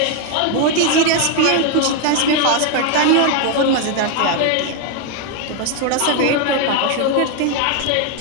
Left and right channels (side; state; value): both; different; correlation 0.01